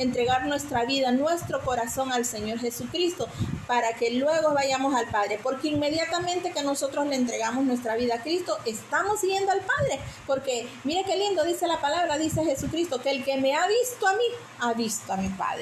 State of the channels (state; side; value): identical; both; correlation 1.00